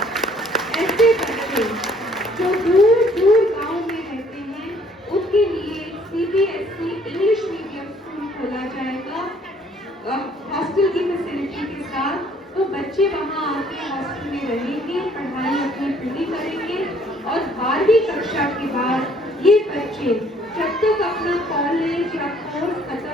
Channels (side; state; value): both; normal; correlation 0.61